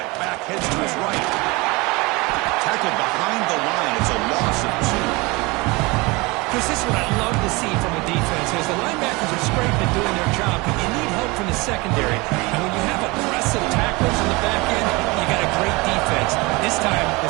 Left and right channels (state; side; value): quieter; left; 24.7 dB